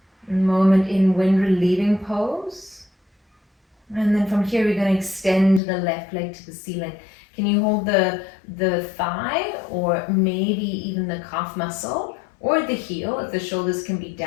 Moment in wind relieving pose. And then from here, we're going to extend the left leg to the ceiling. Can you hold the thigh or maybe even the calf muscle? Or the heel, if the shoulders can be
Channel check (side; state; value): right; drops out; at 5.6 s